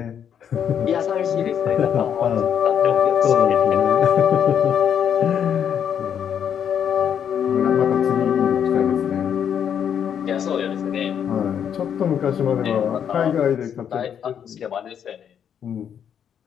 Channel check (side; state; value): right; quieter; 8.5 dB